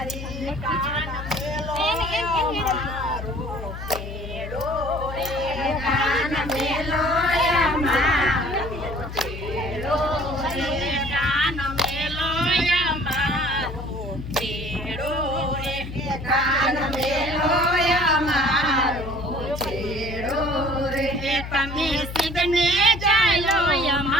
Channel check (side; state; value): left; noise; hum, 9 dB below the sound